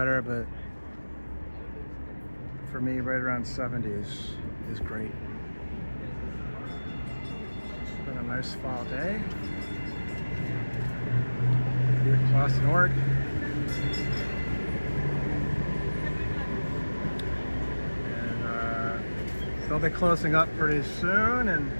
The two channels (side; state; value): both; inverted; correlation -1.00